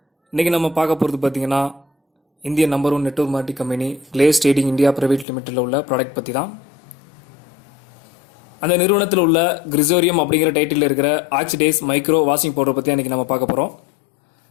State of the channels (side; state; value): right; drops out; at 5.2 s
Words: இன்றைக்கி நம்ம பார்க்க போகிறது பார்த்திங்கன்னா இந்திய number 1 network marketing company Glaze trading India private லிமிட்டடில் உள்ள ப்ராடக்ட் பற்றி தான். அந்த நிறுவனத்தில் உள்ள கிரிசோரியம் அப்படிங்கிற டைட்டில் இருக்கிற ஆக்சிடைஸ் மைக்ரோ வாஷிங் பவுடர் பற்றி இன்றைக்கி நம்ம பார்க்க போகிறோம்.